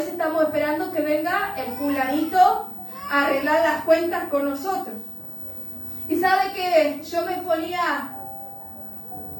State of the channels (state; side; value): identical; both; correlation 1.00